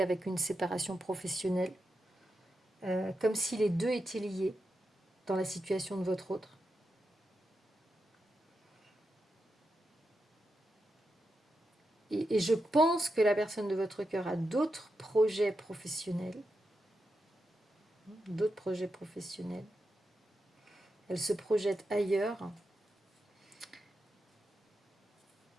une séparation professionnelle, comme si les deux étaient liés dans la situation de votre autre. Et je pense que la personne de votre cœur a d'autres projets professionnels. Elle se projette ailleurs.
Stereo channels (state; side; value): normal; both; correlation 0.87